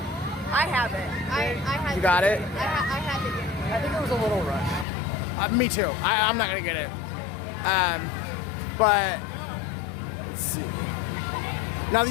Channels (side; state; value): right; drops out; at 4.9 s